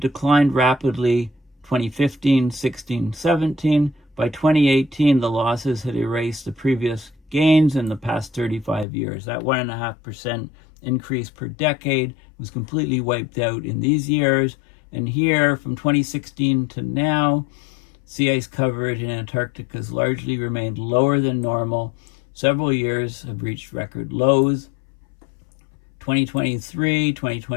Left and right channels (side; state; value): right; drops out; at 8.8 s